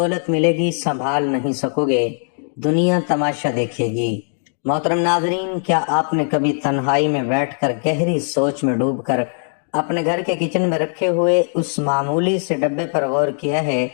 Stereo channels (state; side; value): silent; right; 66 dB below the other